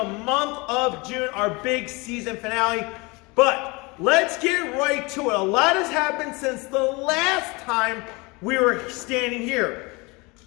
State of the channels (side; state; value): right; quieter; 26.1 dB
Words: month of June, our big season finale. But let's get right to it. A lot has happened since the last time we were standing here.